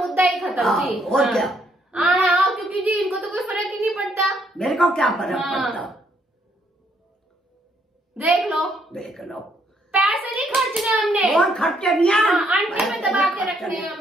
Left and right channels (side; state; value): both; normal; correlation 0.71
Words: ही खत्म जी। और क्या। क्योंकि जी इनको तो कोई फर्क ही नहीं पड़ता। मेरे को क्या फर्क पड़ता। देख लो पैसे नहीं खर्चने हमने। और खर्चे नहीं है। आंटी में दबा के रखने हैं